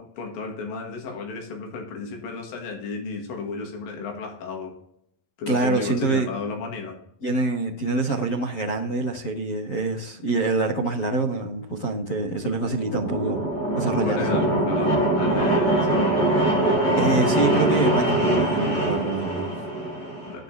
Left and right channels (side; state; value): right; late; 11 ms